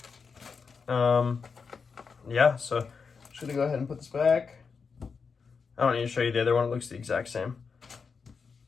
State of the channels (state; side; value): quieter; right; 5.4 dB